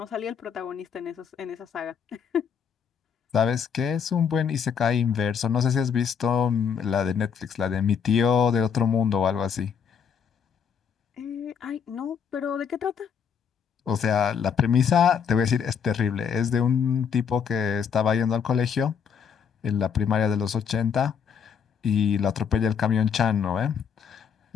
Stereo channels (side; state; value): right; quieter; 7.1 dB